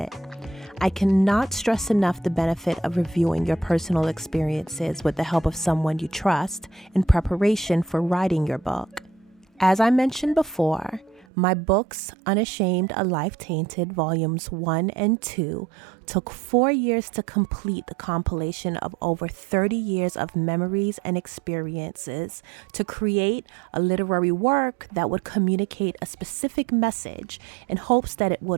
I cannot stress enough the benefit of reviewing your personal experiences with the help of someone you trust in preparation for writing your book. As I mentioned before, my books, Unashamed, A Life Tainted, Volumes 1 and 2, took 4 years to complete the compilation of over 30 years of memories and experiences to create a literary work that would communicate a specific message in hopes that it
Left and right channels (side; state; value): left; drops out; at 11.2 s